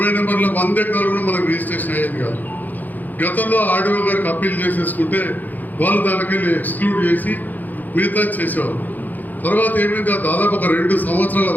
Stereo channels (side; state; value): right; late; 0.084 ms